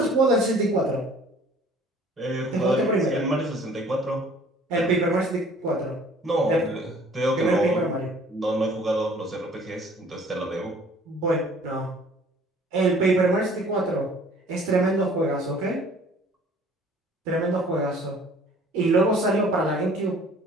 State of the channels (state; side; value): normal; both; correlation 0.53